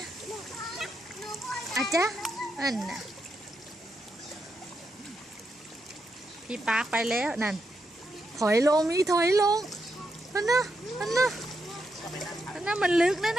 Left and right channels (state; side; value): normal; both; correlation 0.83